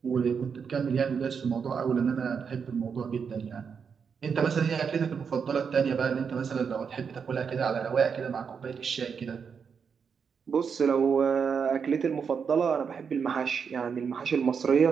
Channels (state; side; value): quieter; left; 6.4 dB